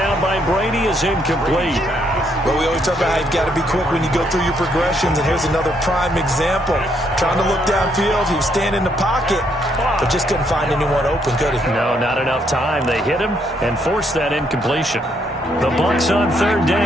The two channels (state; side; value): normal; both; correlation 0.72